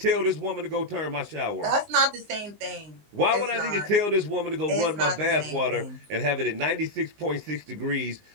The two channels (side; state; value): left; late; 19 ms